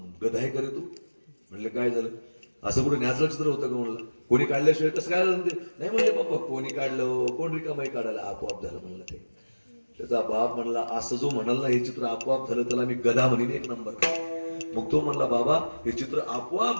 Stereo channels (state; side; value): inverted; both; correlation -1.00